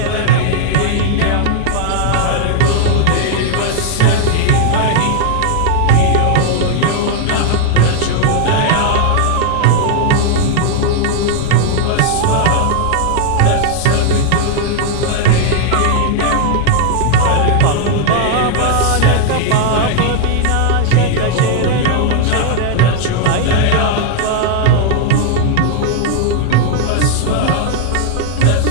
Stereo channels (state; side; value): different; both; correlation 0.00